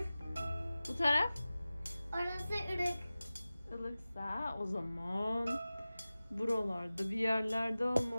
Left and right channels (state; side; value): inverted; both; correlation -0.97